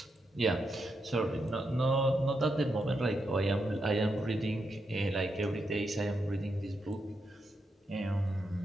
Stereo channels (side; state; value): both; normal; correlation 0.83